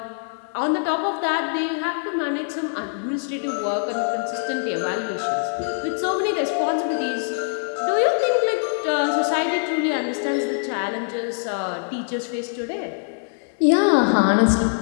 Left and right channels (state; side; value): silent; right; digital silence